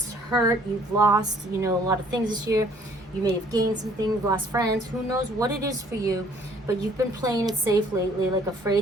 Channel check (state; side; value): normal; both; correlation 0.59